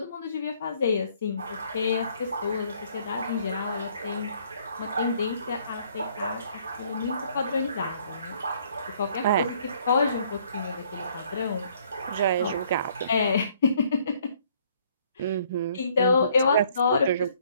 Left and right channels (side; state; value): both; inverted; correlation -0.63